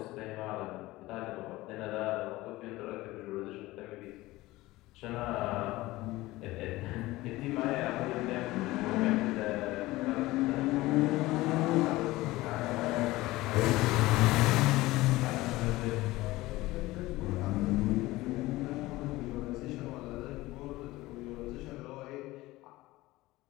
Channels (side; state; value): right; quieter; 18.7 dB